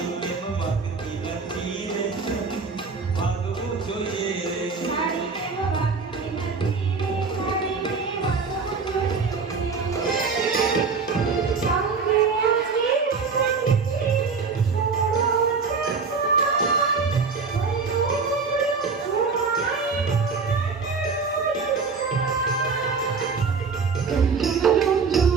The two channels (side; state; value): left; quieter; 4.9 dB